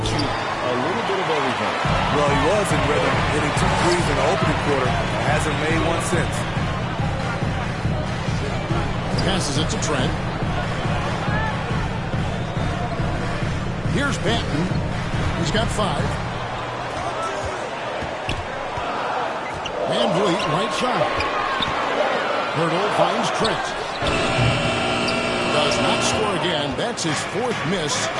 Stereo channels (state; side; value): identical; both; correlation 1.00